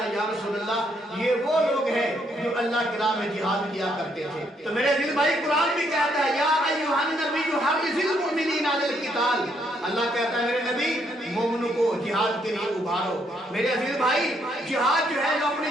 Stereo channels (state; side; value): normal; both; correlation 0.72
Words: یا رسول اللہ یہ وہ لوگ ہیں جو اللہ کی راہ میں جہاد کیا کرتے تھے۔ تو میرے دل بھائی قرآن بھی کہتا ہے، یا ایھا النبی حرض المؤمنین علی القتال، اللہ کہتا ہے میرے نبی مومنوں کو جہاد کے لیے ابھارو۔ میرے عزیز بھائی جہاد جو ہے جو